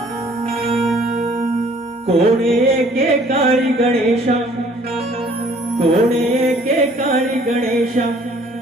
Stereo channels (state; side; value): normal; both; correlation 0.57